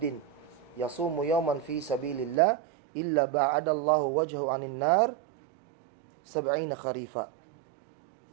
yasumu yawman fi sabilillah illa ba'ada Allahu wajhahu 'anil nar 70 kharifa.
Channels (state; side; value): drops out; left; at 2.4 s